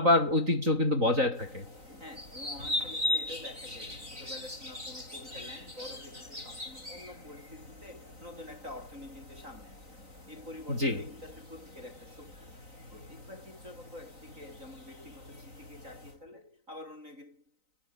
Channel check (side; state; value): left; late; 3.9 ms